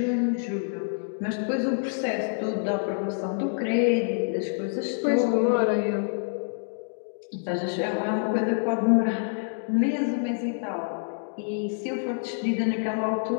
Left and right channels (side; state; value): right; silent; digital silence